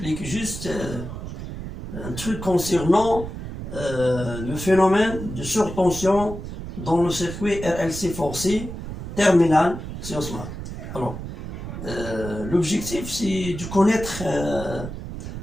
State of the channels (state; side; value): noise; right; rumble, 8 dB below the sound